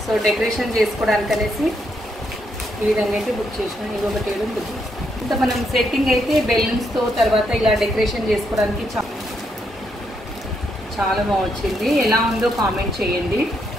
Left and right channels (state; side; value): normal; both; correlation 0.77